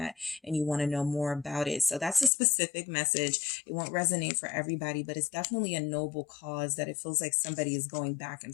and you want to know more about it. So that's a specific message. It won't resonate for everybody, but it's definitely a noble cause that it feels like somebody is going back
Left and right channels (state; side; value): drops out; right; at 2.3 s